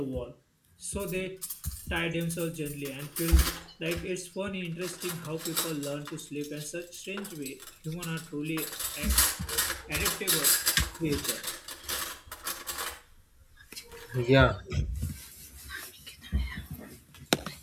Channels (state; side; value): identical; both; correlation 1.00